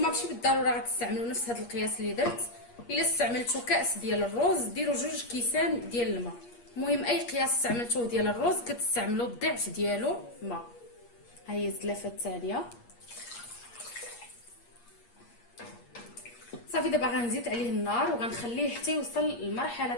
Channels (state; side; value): late; right; 8.5 ms